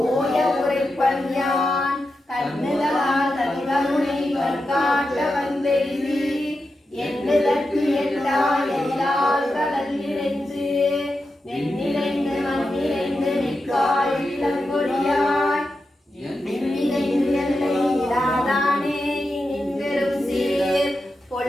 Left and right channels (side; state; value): both; normal; correlation 0.89